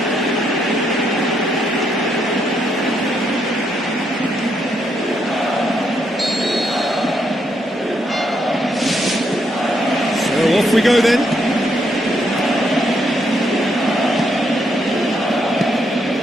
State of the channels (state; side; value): normal; both; correlation 0.76